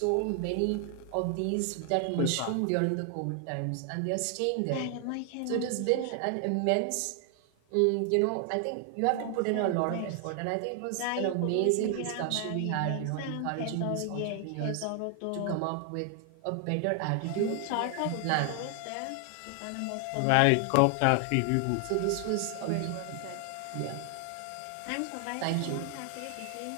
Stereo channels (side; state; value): both; different; correlation 0.00